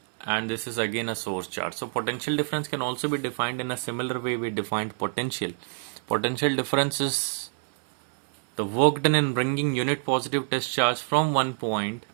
and this is again a source charge. So potential difference can also be defined in a similar way we defined potential. Potential difference is the work done in bringing unit positive test charge from one point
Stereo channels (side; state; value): left; silent; 60 dB below the other